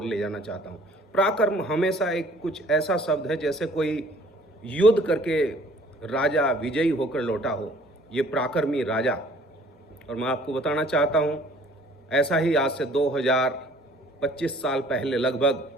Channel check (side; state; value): both; normal; correlation 0.55